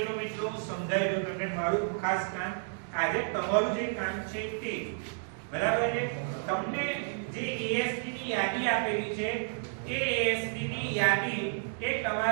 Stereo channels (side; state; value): left; silent; digital silence